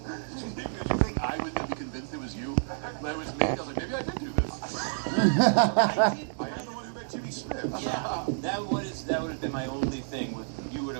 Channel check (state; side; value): silent; left; digital silence